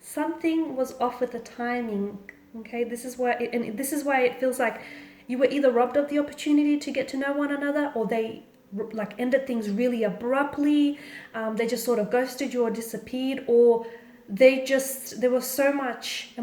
was off with the timing. Okay, this is why it feels like you were either robbed of the opportunity to get to know one another, or they like ended things really abruptly. They just sort of ghosted you or disappeared, or there was so much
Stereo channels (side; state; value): both; identical; correlation 1.00